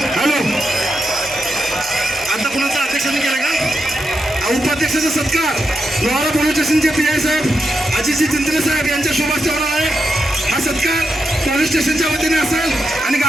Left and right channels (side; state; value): both; normal; correlation 0.86